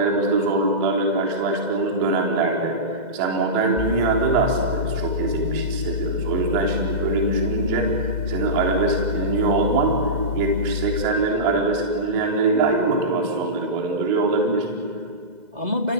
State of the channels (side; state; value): left; late; 2.0 ms